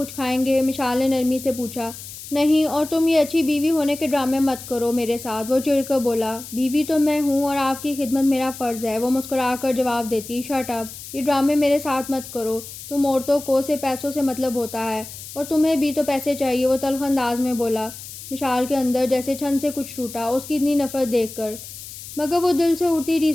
کھائیں گے؟ مشال نے نرمی سے پوچھا۔ نہیں، اور تم یہ اچھی بیوی ہونے کے ڈرامے مت کرو میرے ساتھ، وہ چڑ کر بولا۔ بیوی تو میں ہوں اور آپ کی خدمت میرا فرض ہے، وہ مسکرا کر جواب دیتی۔ شٹ اپ، یہ ڈرامے میرے ساتھ مت کرو، تم عورتوں کو صرف پیسوں سے مطلب ہوتا ہے، اور تمہیں بھی تو پیسے چاہیے، وہ تلخ انداز میں بولا۔ مشال کے اندر جیسے چھن سے کچھ ٹوٹا اس کی اتنی نفرت دیکھ کر، مگر وہ دل سے اڑتی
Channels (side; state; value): left; noise; hiss, 13 dB below the sound